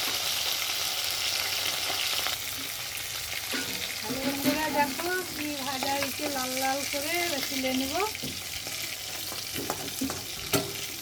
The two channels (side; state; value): both; identical; correlation 1.00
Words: হ্যালো বন্ধুরা, দেখো কি ভাজা হয়েছে, লাল লাল করে তুলে নেব।